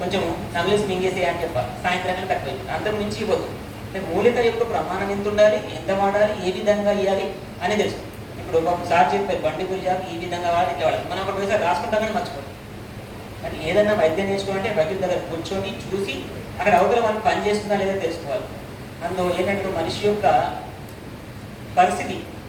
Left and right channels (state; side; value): identical; both; correlation 1.00